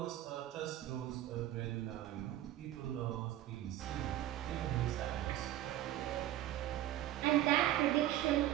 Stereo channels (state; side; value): quieter; left; 13.5 dB